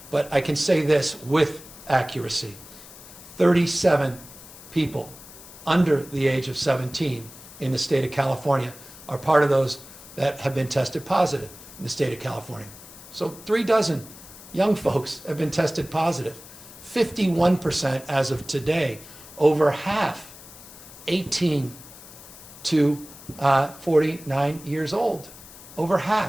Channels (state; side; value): noise; left; hiss, 18 dB below the sound